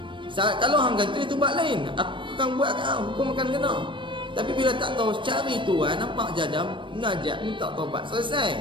Kalau hang kantoi tu buat lain. Aku akan buat kat hang, hukum akan kena. Tapi bila tak tahu, cari tuan, nampak jadam, najak, minta taubat,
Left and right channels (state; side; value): late; left; 0.24 ms